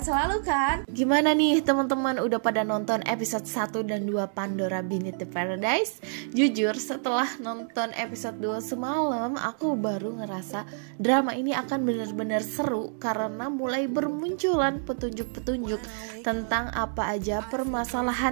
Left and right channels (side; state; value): left; silent; digital silence